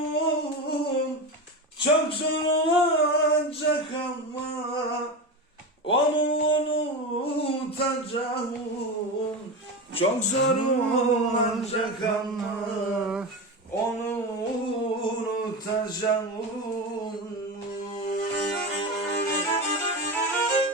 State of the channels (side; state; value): both; normal; correlation 0.22